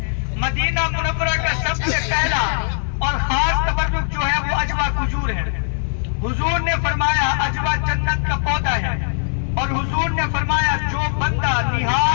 मदीना मुनव्वरा का सबसे पहला और खास तबर्रुक जो है वो अजवा खजूर है। हुजूर ने फरमाया अजवा जन्नत का पौधा है, और हुजूर ने फरमाया जो बंदा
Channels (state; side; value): silent; right; digital silence